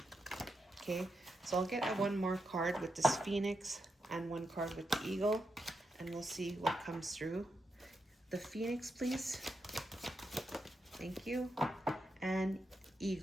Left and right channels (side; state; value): both; normal; correlation 0.85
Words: Okay, so I'll get one more card with this phoenix and one card with the eagle, and we'll see what comes through. The phoenix, please. Thank you. And